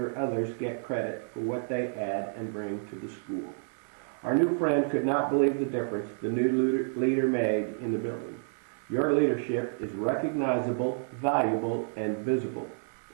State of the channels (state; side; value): silent; left; digital silence